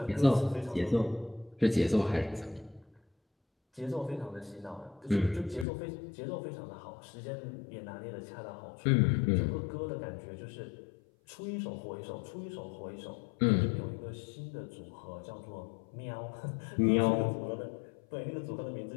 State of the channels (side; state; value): right; drops out; at 5.7 s